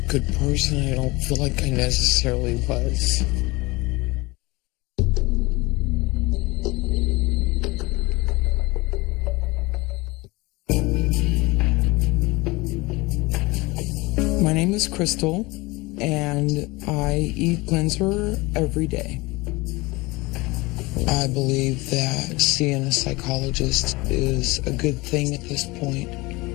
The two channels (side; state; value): right; quieter; 22.9 dB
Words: person. I don't feel like I necessarily was. My name is Crystal, and I eat cleanser every day. I believe that seeing a psychologist is a good thing at this point.